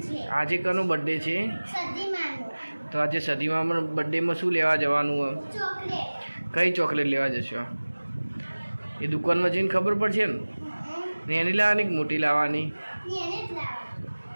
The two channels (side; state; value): both; inverted; correlation -1.00